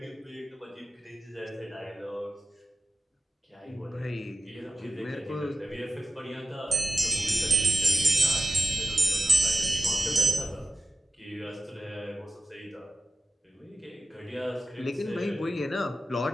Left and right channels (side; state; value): both; normal; correlation 0.93